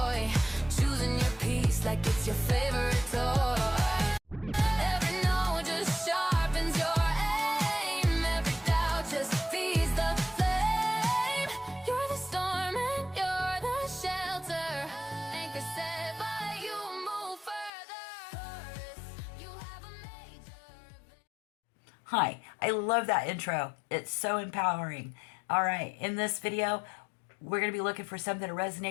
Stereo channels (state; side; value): drops out; right; at 17.7 s